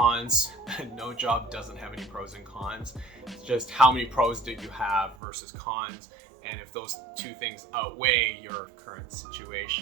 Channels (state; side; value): drops out; left; at 5.2 s